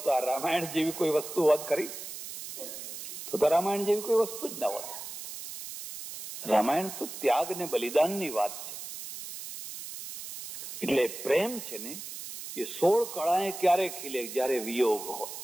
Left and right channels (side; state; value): right; noise; hiss, 10 dB below the sound